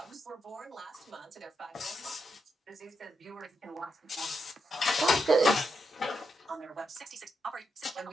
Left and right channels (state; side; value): normal; both; correlation 0.82